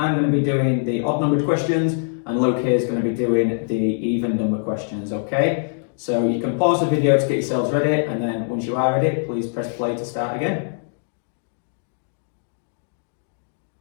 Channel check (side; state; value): right; silent; digital silence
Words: going to be doing the odd numbered questions, and Luke here is going to be doing the even number questions, okay? So you can pause the video to get yourselves ready, and then once you are ready, please press play to start again.